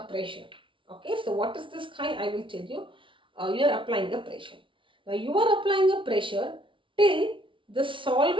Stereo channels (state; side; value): late; left; 0.25 ms